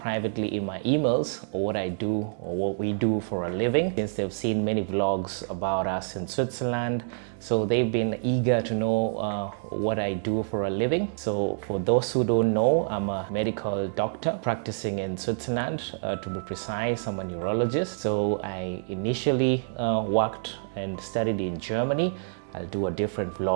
in my emails what I do or what we do for a living, since they've seen many vlogs about us in Switzerland. So they've been eager to know what I do for a living. So for those who don't know, I'm a medical doctor practicing in Switzerland. To be precise, I'm a neurologist. So I initially worked and studied in Germany. I'll do a different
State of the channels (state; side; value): silent; left; 60 dB below the other